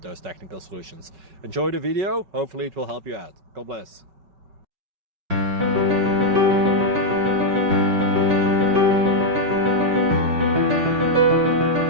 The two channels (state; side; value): late; left; 5.3 ms